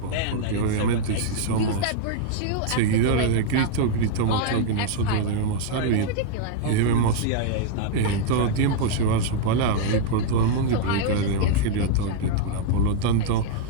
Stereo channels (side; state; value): both; different; correlation -0.01